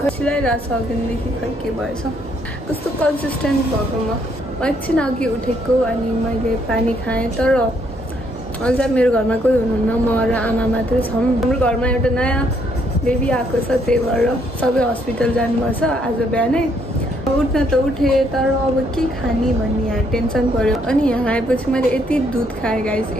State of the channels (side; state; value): both; normal; correlation 0.70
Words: खसिलाइरहेको छ अघिदेखि खै के भएछ कस्तो कन्सिस्टेन्ट भएको म एकछिन अघि उठेको अनि मैले पानी खाएँ तर अझ मेरो घरमा कोही हुनुहुन्न म र आमा मात्रै छौँ हाम्रो घरमा एउटा नयाँ बेबी आएको छ त्यही भएर सबै हस्पिटल जानुपर्छ आज बिहानै उठ्न त उठेँ तर अब के खाने भन्ने यहाँ टेन्सन पर्यो अनि यहाँ आएपछि मैले यति दुध खाएँ गाइस